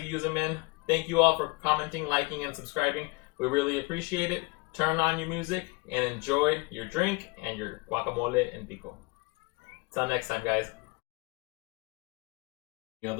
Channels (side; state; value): right; quieter; 26.4 dB